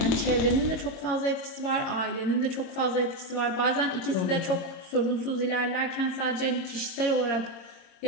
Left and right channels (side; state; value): right; late; 22 ms